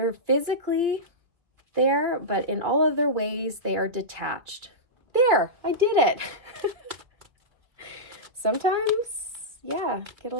physically there, but in all other ways, they are detached. There, I did it. Sometimes, yeah, get a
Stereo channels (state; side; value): late; left; 2.4 ms